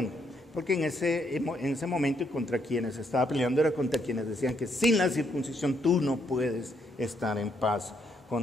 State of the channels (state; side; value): normal; both; correlation 0.74